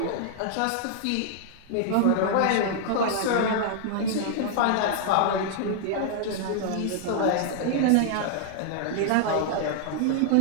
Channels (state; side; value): different; both; correlation -0.01